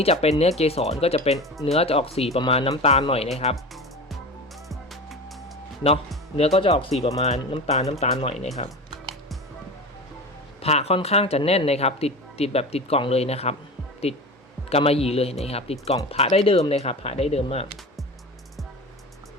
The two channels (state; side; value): normal; both; correlation 0.30